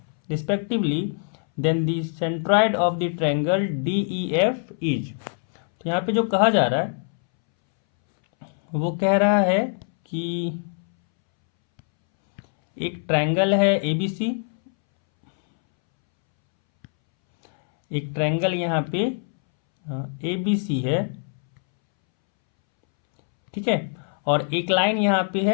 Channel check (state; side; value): silent; right; 63 dB below the other